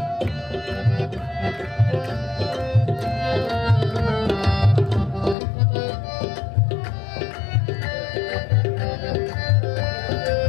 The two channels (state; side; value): drops out; right; at 5.4 s